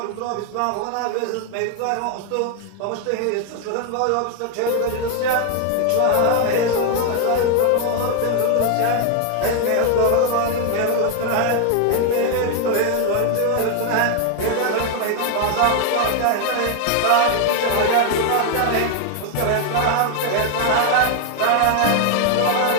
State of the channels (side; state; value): both; different; correlation 0.00